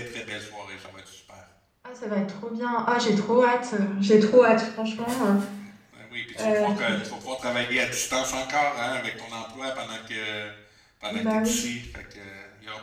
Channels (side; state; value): both; identical; correlation 1.00